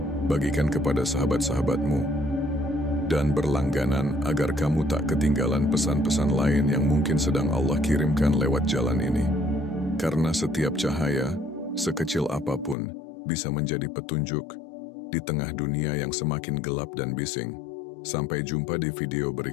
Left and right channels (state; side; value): drops out; right; at 12.8 s